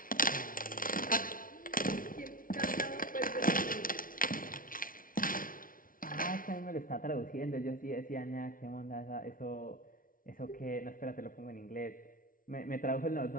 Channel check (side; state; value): right; late; 0.40 ms